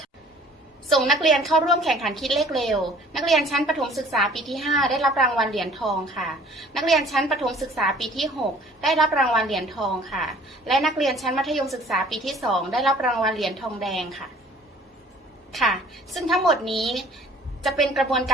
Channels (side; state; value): both; normal; correlation 0.52